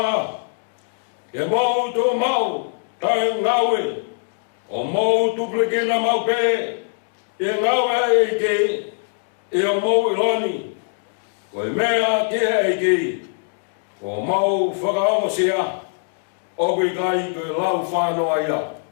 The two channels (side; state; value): right; silent; digital silence